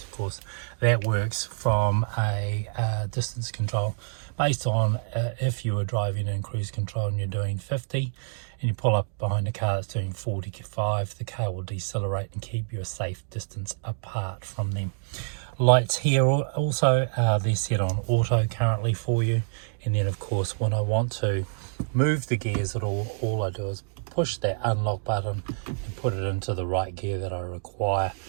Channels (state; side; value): silent; left; digital silence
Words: of course that works from a distance control based on if you were driving in cruise control and you're doing 50 and you pull up behind a car that's doing 45, the car will decelerate and keep you a safe distance apart from them. Lights here also, they're set on auto currently for you, and then of course when I want to move the gears at all I do is push that unlock button and put it into the right gear that I require.